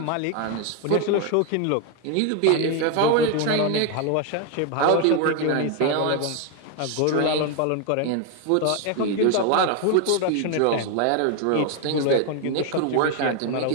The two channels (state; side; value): different; both; correlation 0.01